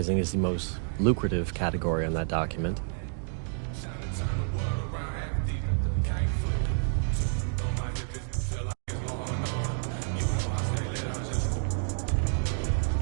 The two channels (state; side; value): silent; left; digital silence